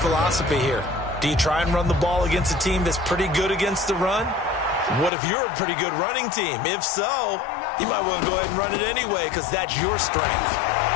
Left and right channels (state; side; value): drops out; right; at 5.1 s